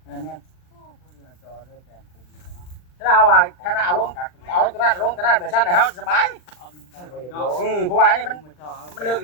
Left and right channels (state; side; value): late; right; 39 ms